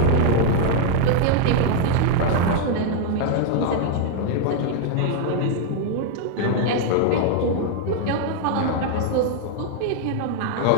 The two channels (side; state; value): both; different; correlation 0.00